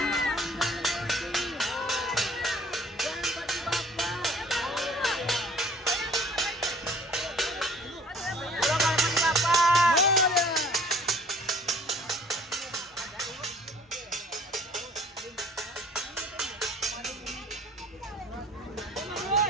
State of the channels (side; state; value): both; normal; correlation 0.53